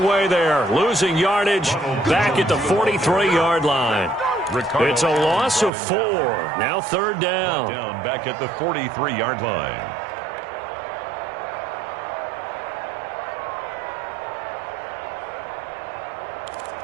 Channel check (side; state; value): left; drops out; at 5.7 s